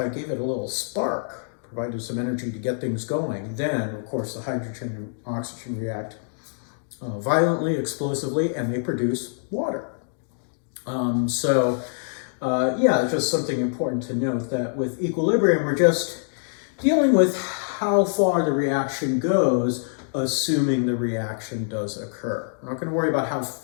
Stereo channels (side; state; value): right; silent; digital silence